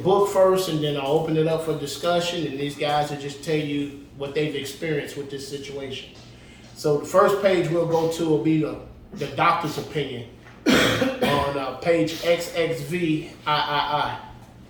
first, and then I'll open it up for discussion, and these guys will just tell you what they've experienced with this situation. So the first page we'll go to will be the doctor's opinion on page XXVIII.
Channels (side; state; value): both; identical; correlation 1.00